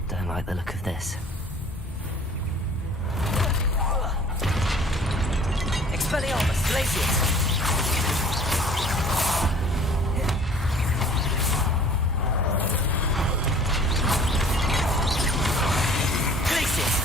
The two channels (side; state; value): both; normal; correlation 0.50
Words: Like the look of this. Expelliarmus, Glacius! Glacius!